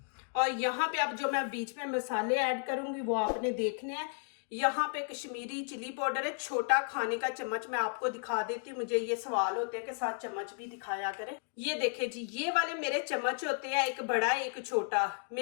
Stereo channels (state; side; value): silent; right; 55 dB below the other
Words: और यहाँ पे अब जो मैं बीच में मसाले ऐड करूँगी वो आपने देखने हैं। यहाँ पे कश्मीरी चिली पाउडर है, छोटा खाने का चम्मच। मैं आपको दिखा देती हूँ, मुझे ये सवाल होते हैं कि साथ चम्मच भी दिखाया करें। ये देखे जी, ये वाले मेरे चम्मच होते हैं, एक बड़ा एक छोटा।